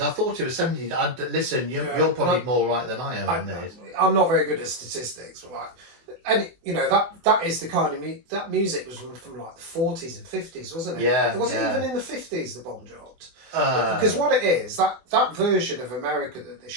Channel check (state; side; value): late; left; 24 ms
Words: thought it was 70s. Listen, you're probably more right than I am on this. I'm not very good at statistics, but like And you know that is the kind of that music was from like the 40s and 50s, wasn't it? Yeah, It wasn't yeah. even in the 50s the bomb dropped. Uh, Because what it is, that version of America that they're